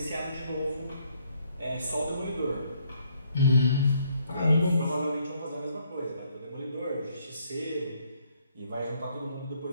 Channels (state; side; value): inverted; both; correlation -0.70